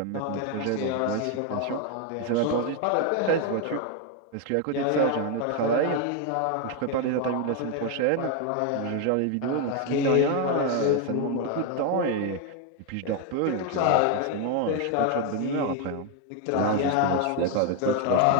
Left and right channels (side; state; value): both; different; correlation 0.01